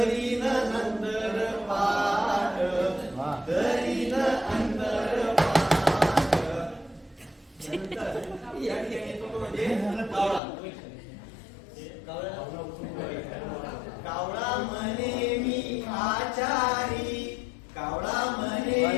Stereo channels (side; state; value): right; drops out; at 10.4 s